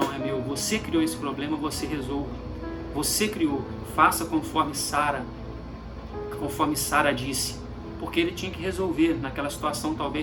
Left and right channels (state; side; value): identical; both; correlation 1.00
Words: é meu. Você criou esse problema, você resolve. Você criou, faça conforme Sara disse. Porque ele tinha que resolver naquela situação,